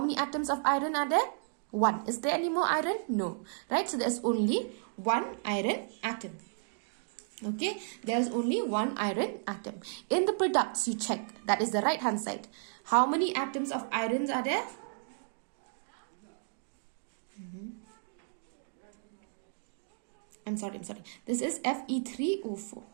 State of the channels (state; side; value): silent; left; digital silence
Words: atoms of iron are there? 1. Is there any more iron? No, right? So there's only 1 iron atom. Okay, there's only 1 iron atom. In the products, you check, that is the right hand side. How many atoms of irons are there? I'm sorry. This is Fe3O4.